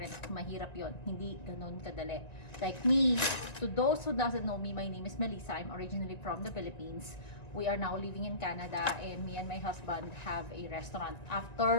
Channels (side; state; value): right; late; 1.9 ms